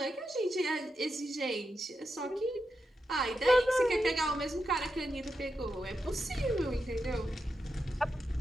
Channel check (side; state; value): both; normal; correlation 0.87